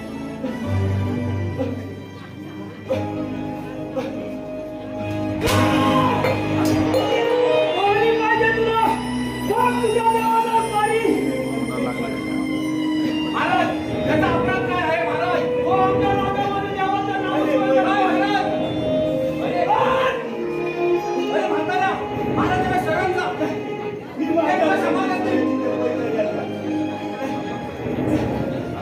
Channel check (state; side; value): identical; both; correlation 1.00